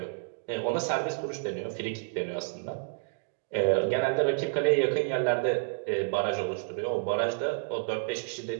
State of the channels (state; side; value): silent; left; digital silence